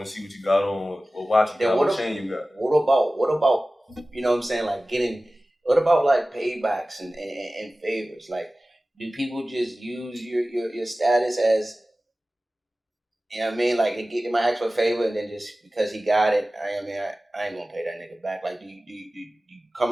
to see what you got on, or watch what chain you got. What about you know what I'm saying? Like what about like paybacks and favors? Like, do people just use your status as, you know what I mean? Like, they might ask for a favor, and then just because he got it, I ain't gonna pay that nigga back. Like, do you come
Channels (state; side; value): normal; both; correlation 0.97